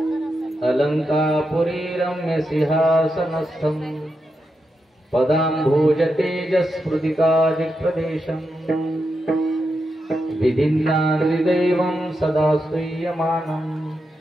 अलङ्कापुरी रम्यसिंहासनस्थं पदाम्भोज तेजस्फुटिकादिप्रदेशम् विधिन्नादिदेवं सदा स्तूयमानं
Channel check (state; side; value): normal; both; correlation 0.86